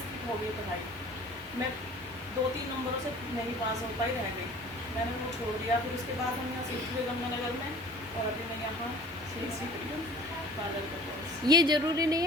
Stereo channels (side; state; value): both; normal; correlation 0.46